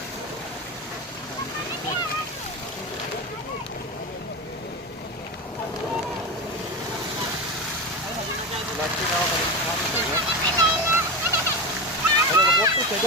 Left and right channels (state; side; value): normal; both; correlation 0.20